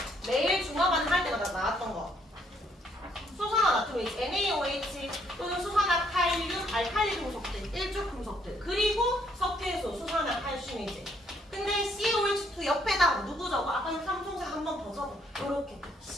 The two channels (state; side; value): normal; both; correlation 0.69